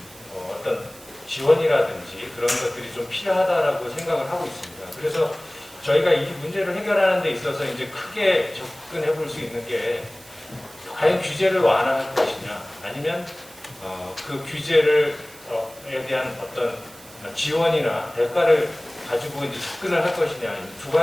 어떤 지원이라든지 그런 것들이 좀 필요하다라고 생각을 하고 있습니다. 그래서 저희가 이 문제를 해결하는 데 있어서 이제 크게 접근해 볼 수 있는 게 과연 규제를 완화할 것이냐, 아니면 그 규제를 에 대한 어떤 지원이나 대가를 가지고 이제 접근을 할 것이냐, 두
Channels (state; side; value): noise; right; hiss, 21 dB below the sound